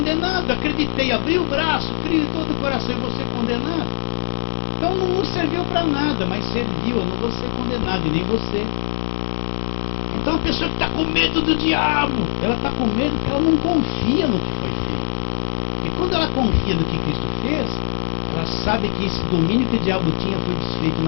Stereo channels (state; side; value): silent; right; digital silence